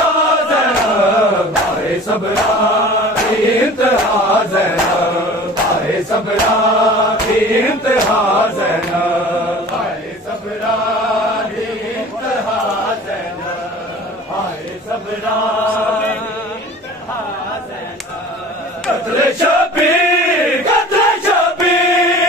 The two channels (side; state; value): both; normal; correlation 0.42